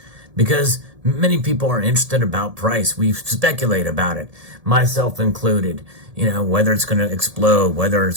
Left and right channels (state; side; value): late; left; 1.7 ms